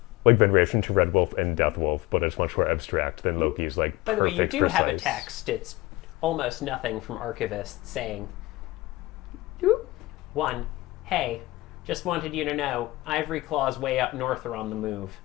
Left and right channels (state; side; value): quieter; right; 19.5 dB